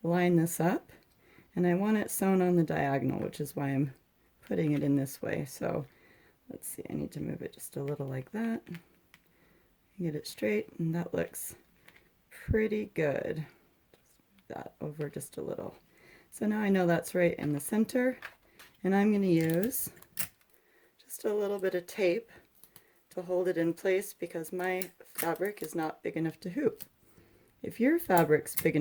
line this up, and I want it sewn on the diagonal, which is why I'm putting it in this way. So let's see, I need to move it just a little like that, get it straight, and that looks pretty good. Just move that over just a little. So now I know that's right in the center, and I'm going to use just a little bit of tape to hold it in place because my fabric is not big enough to hoop. If your fabric's big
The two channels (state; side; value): identical; both; correlation 1.00